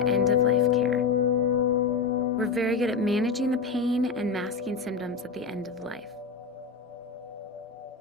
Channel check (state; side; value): quieter; right; 4.9 dB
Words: end-of-life care. We're very good at managing the pain and masking symptoms at the end of life.